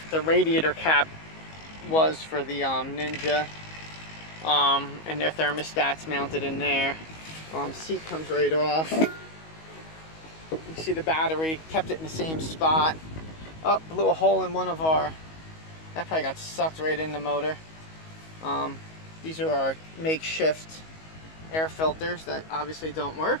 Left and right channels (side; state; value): right; late; 19 ms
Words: radiator cap was for the Ninja, and their thermostat's mounted in there. Seat comes right off. You see the battery, kept it in the same spot. Oh, blew a hole in one of our, that probably got sucked right in the motor. These are our makeshift air filters that obviously don't work.